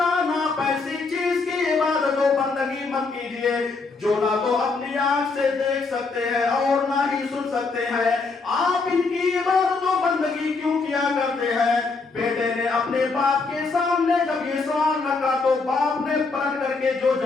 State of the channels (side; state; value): right; quieter; 4.1 dB